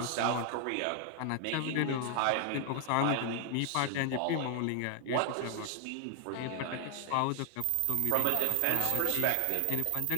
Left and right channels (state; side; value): different; both; correlation 0.00